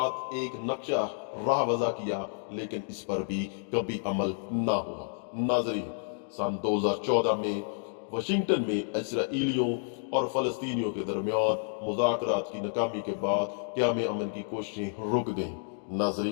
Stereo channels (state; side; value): silent; right; digital silence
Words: एक नक्शा राह वज़ा किया, लेकिन इस पर भी कभी अमल ना हुआ। नाजरीन, सन 2014 में वाशिंगटन में इसराइलियों और फ़लस्तीनियों के दरमियान मुज़ाकरात की नाकामी के बाद क़याम अमन की कोशिशें रुक गईं।